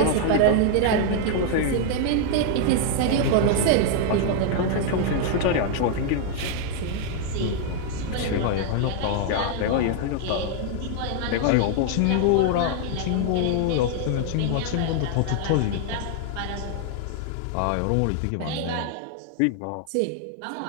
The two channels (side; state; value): both; different; correlation 0.00